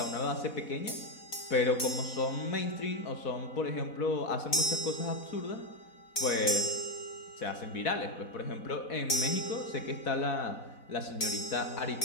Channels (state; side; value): late; right; 4.1 ms